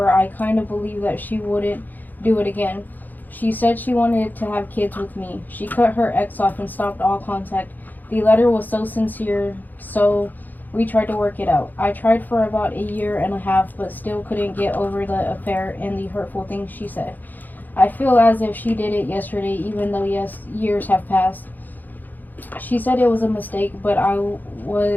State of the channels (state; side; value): late; right; 0.085 ms